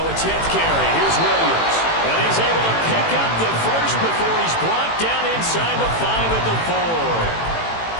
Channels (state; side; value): late; right; 18 ms